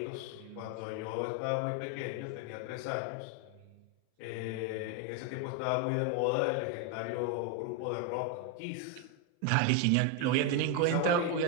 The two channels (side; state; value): both; different; correlation 0.01